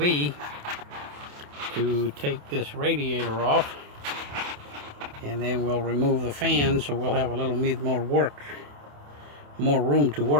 to take this radiator off, and then we'll remove the fan, so we'll have a little bit more room to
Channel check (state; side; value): late; left; 28 ms